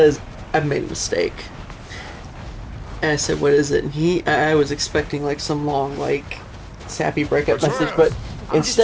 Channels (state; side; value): identical; both; correlation 1.00